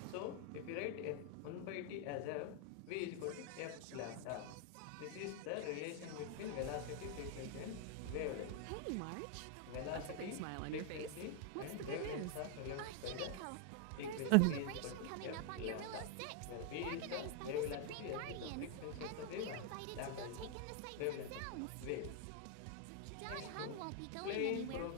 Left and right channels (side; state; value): both; different; correlation 0.01